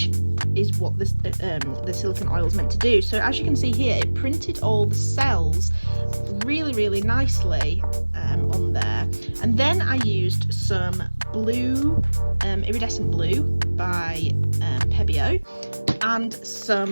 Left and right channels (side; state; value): both; inverted; correlation -1.00